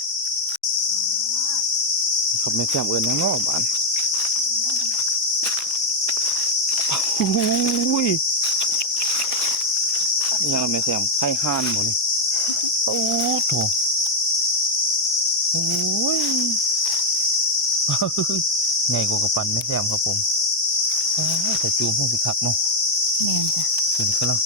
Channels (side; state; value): both; normal; correlation 0.01